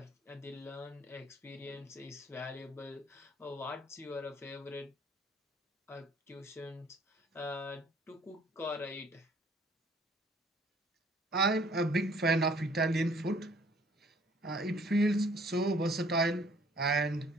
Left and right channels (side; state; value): both; normal; correlation 0.58